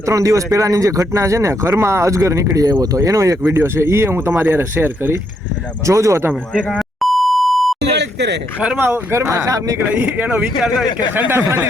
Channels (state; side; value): normal; both; correlation 0.76